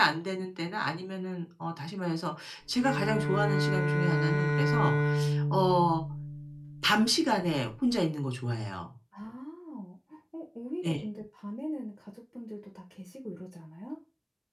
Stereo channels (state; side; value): identical; both; correlation 1.00